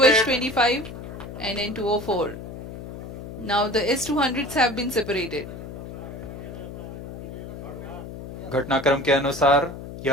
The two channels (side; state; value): left; noise; hum, 11 dB below the sound